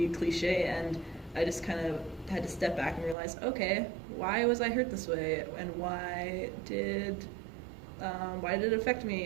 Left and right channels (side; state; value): left; drops out; at 3.2 s